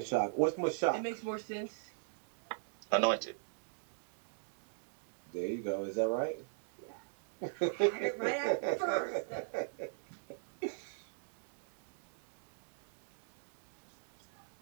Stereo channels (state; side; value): silent; left; digital silence